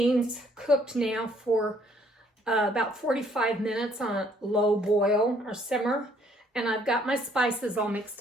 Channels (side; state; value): both; normal; correlation 0.64